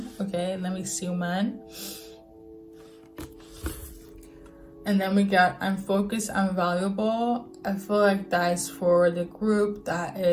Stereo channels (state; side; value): identical; both; correlation 1.00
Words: Okay, let me see, man. And then we got I'm focused, I'm valuable. I feel like that's for the group that